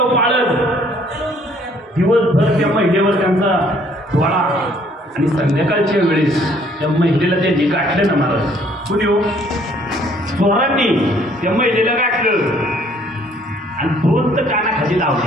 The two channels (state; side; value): normal; both; correlation 0.61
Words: पाळत, दिवसभर त्या महिलेवर त्यांचा डोळा. आणि संध्याकाळच्या वेळेस त्या महिलेला त्यांनी गाठलं ना महाराज. कुणी हो? चोरांनी त्या महिलेला गाठलं आणि 2 तर कानाखाली